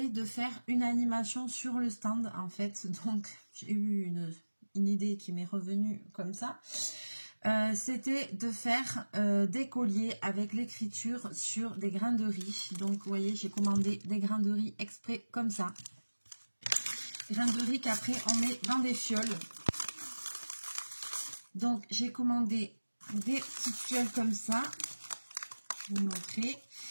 de faire une animation sur le stand, en fait. Donc, j'ai eu une idée qui m'est revenue comme ça. C'était de faire des colliers avec l'écriture sur des grains de riz. Donc, vous voyez, j'ai commandé des grains de riz exprès comme ça. Des grains de riz qu'après, on met dans des fioles. Donc, j'ai commandé des petites fioles comme ça. Je vais vous montrer.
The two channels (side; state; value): both; inverted; correlation -1.00